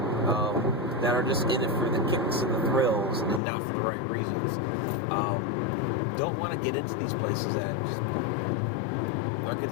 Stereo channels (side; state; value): right; drops out; at 3.4 s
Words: that are just in it for the kicks and the thrills and not for the right reasons don't want to get into these places that just are